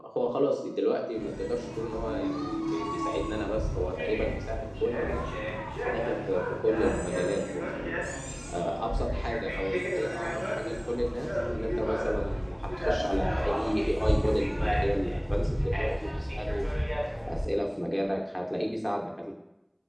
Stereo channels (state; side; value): identical; both; correlation 1.00